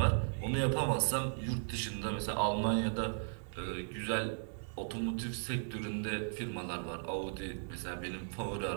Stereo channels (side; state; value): left; silent; digital silence